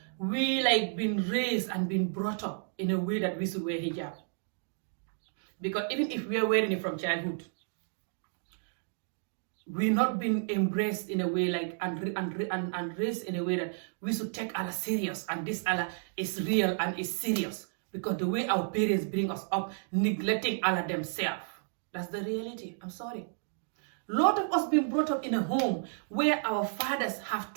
we like been raised and been brought up in a way that we should wear hijab. Because even if we are wearing it from childhood, we're not being embraced in a way like and raised in a way that we should take Allah serious, and this Allah is real and is serious. Because the way our parents bring us up, neglecting Allah themselves. That's the reality. I'm sorry. A lot of us been brought up in a home where our fathers have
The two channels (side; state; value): left; silent; digital silence